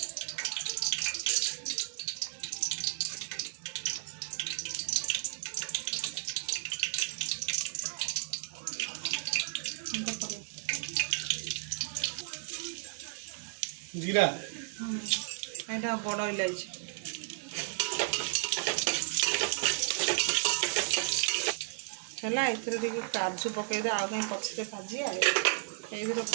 जीरा एटा बड़ इलायची है ए काजू पकईदे आउ कहीं पछे भाजी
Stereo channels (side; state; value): left; silent; digital silence